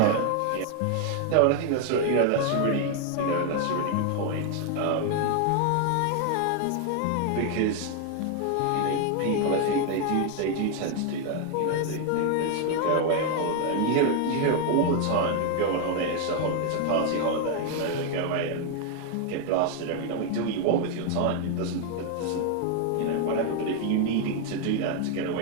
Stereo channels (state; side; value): different; both; correlation 0.00